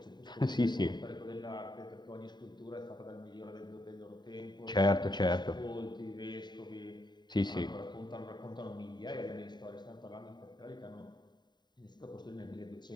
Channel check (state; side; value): late; right; 0.21 ms